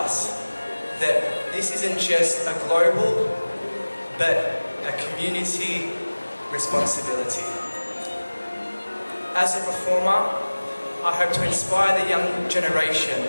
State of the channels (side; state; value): both; inverted; correlation -1.00